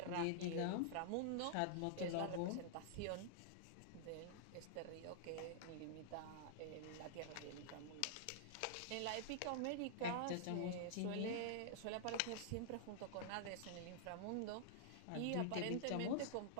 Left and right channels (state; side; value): different; both; correlation -0.01